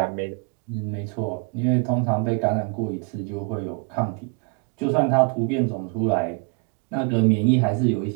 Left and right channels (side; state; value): left; quieter; 35.8 dB